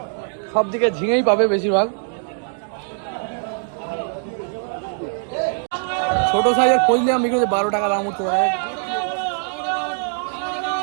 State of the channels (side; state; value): left; silent; digital silence